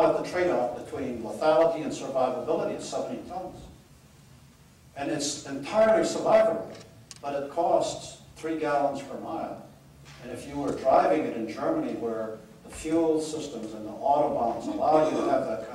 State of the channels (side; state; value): both; identical; correlation 1.00